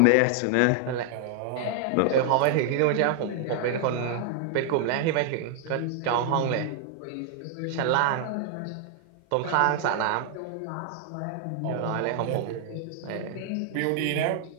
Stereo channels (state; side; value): different; both; correlation 0.00